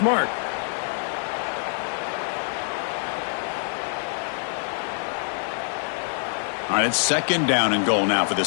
All right, it's 2nd down and goal now for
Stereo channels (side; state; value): right; silent; 62 dB below the other